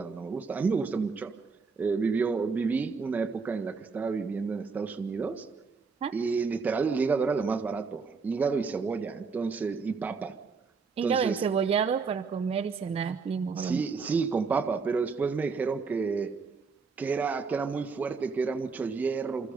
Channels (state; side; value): quieter; left; 4.9 dB